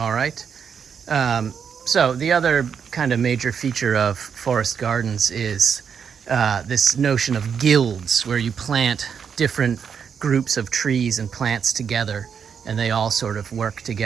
right. So the other kind of major feature of forest gardens is this notion of guilds, where you plant different groups of trees and plants together, and they all sort of work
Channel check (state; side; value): quieter; left; 7.0 dB